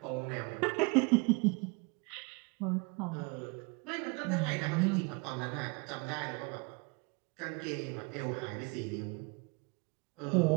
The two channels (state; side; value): quieter; left; 29.9 dB